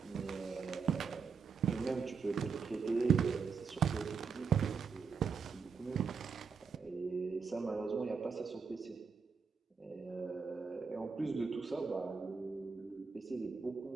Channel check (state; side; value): quieter; left; 5.6 dB